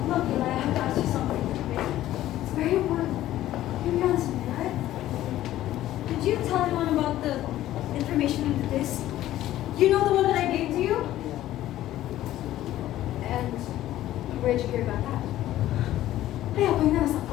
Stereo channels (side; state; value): right; quieter; 13.9 dB